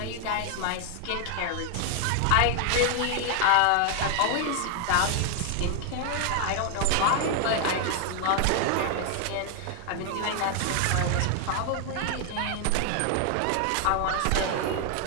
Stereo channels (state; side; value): different; both; correlation 0.00